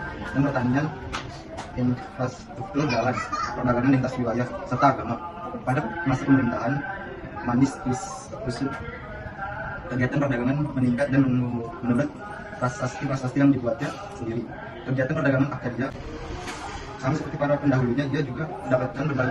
dan pertanian, infrastruktur jalan, perdagangan lintas wilayah, serta agama. Pada masa pemerintahan Manis Kusut, kegiatan perdagangan meningkat dan menurut prasasti yang dibuatnya sendiri. Kegiatan perdagangan Akkadia sama seperti para pendahulunya, dia juga mendapatkan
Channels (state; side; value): identical; both; correlation 1.00